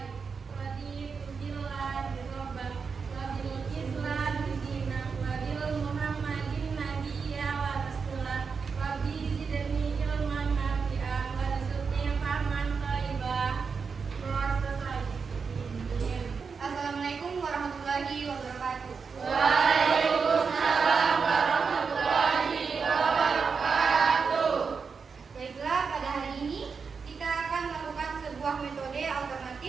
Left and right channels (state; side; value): quieter; left; 5.5 dB